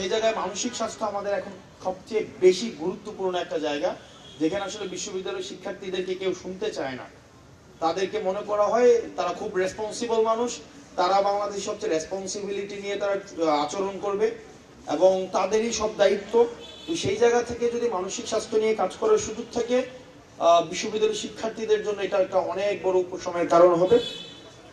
জায়গায় মানসিক স্বাস্থ্য আমাদের এখন সবচেয়ে বেশি গুরুত্বপূর্ণ একটা জায়গা, যেখানে আসলে বিশ্ববিদ্যালয়ের শিক্ষার্থীদেরকে কেউ শুনতে চায় না। তাদেরকে মনে করা হয় তারা খুব রেসপন্সিবল মানুষ, তারা বাংলাদেশের সবচেয়ে রেসপন্সিবিলিটি নিয়ে তারা আচরণ করবে এবং তাদেরই সব দায়িত্ব। তো সেই জায়গা থেকে যদি মানসিক স্বাস্থ্য নিয়ে কাজ করার সুযোগ থাকে, বিশ্ববিদ্যালয়ের শিক্ষার্থীদের জন্য এটা একটা অনেক বড় উপশমের কারণ হবে।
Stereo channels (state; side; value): identical; both; correlation 1.00